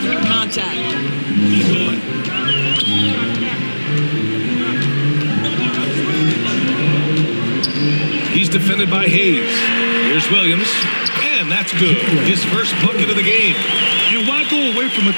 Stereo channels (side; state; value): both; inverted; correlation -1.00